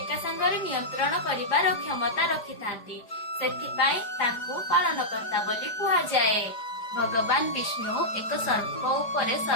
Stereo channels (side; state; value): right; late; 5.0 ms